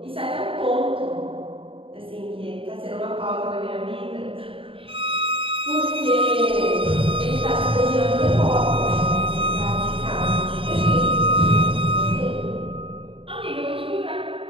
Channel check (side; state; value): left; late; 0.26 ms